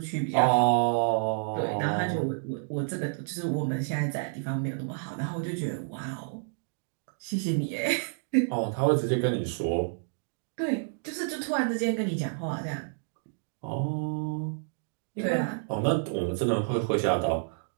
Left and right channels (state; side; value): silent; left; digital silence